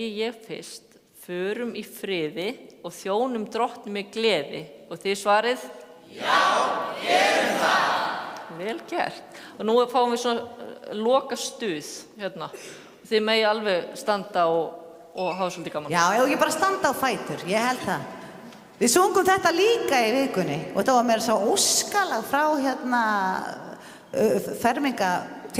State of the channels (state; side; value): identical; both; correlation 1.00